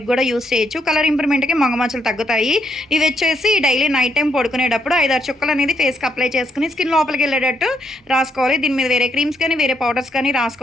కూడా యూస్ చేయొచ్చు. కలర్ ఇంప్రూవ్మెంట్కి మొగమచ్చలు తగ్గుతాయి. ఇవి వచ్చేసి డైలీ నైట్ టైం పడుకునేటప్పుడు 5-6 చుక్కలు అనేది ఫేస్కి అప్లై చేసుకుని స్కిన్ లోపలికి వెళ్ళేటట్టు రాసుకోవాలి. దీని మీద వేరే క్రీమ్స్ కానీ వేరే పౌడర్స్ కానీ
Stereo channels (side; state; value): both; normal; correlation 0.75